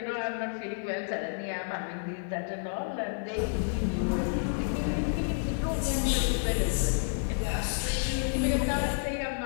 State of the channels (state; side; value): silent; right; 58 dB below the other